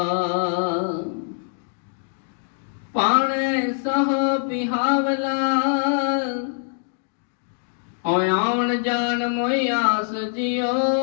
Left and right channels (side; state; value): right; silent; digital silence